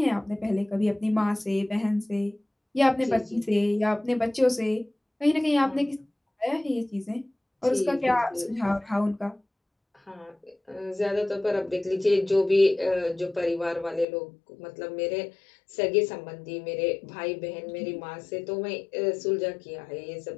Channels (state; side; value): drops out; right; at 14.1 s